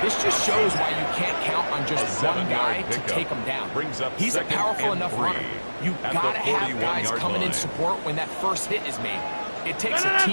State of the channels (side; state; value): both; inverted; correlation -1.00